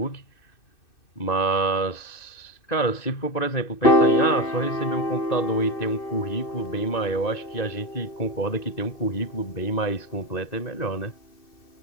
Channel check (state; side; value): late; right; 2.6 ms